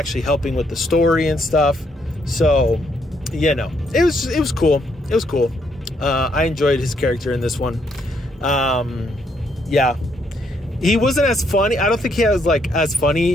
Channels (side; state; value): both; normal; correlation 0.73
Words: helping with the story and stuff. So, you know, it was cool. It was cool. I enjoyed his character in this one. Yeah. He wasn't as funny. I don't think he was like as